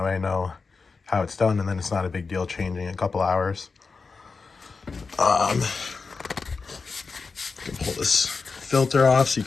way I know how it's done, and then it's not a big deal changing in a couple hours. Can pull this filter off so you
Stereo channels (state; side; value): quieter; right; 4.6 dB